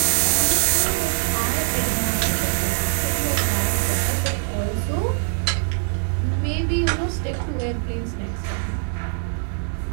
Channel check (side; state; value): left; silent; digital silence